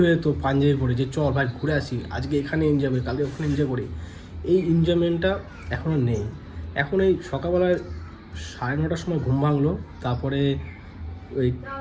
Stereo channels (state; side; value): identical; both; correlation 1.00